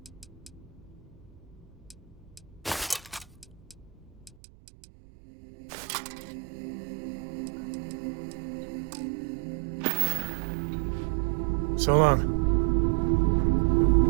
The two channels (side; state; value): left; drops out; at 4.4 s